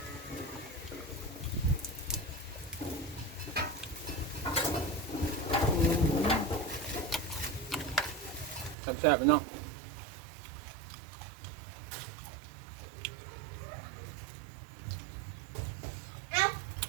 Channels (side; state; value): left; drops out; at 8.8 s